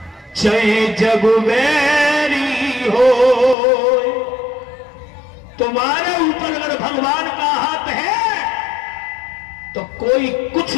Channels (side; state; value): right; drops out; at 3.6 s